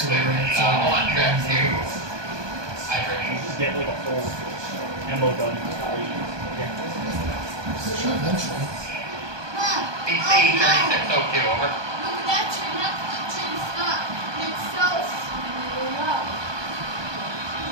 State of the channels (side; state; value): left; late; 1.2 ms